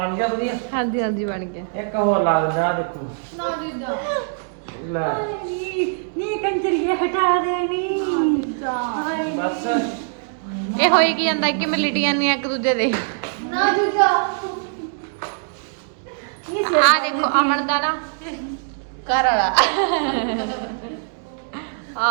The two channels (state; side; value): silent; left; digital silence